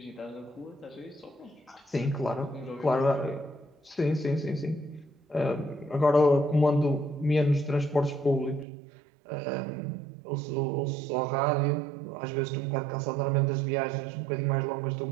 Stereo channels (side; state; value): left; drops out; at 8.7 s